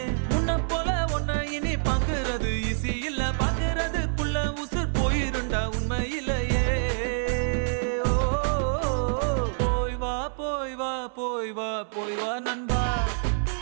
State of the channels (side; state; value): left; silent; 60 dB below the other